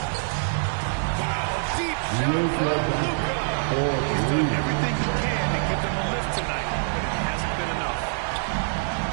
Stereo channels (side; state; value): left; silent; digital silence